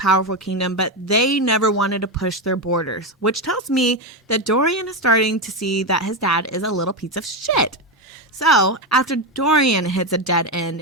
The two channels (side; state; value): both; normal; correlation 0.11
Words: kingdom, but they never wanted to push their borders, which tells me that Dorian is starting to see that his dad is a little piece of shit. So, after Dorian hits a dead end